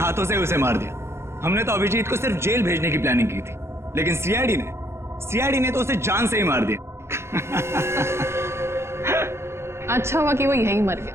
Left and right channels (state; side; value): late; left; 0.13 ms